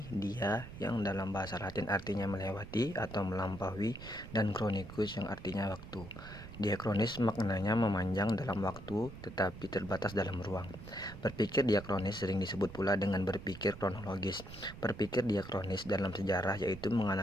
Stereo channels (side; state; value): right; noise; rumble, 14 dB below the sound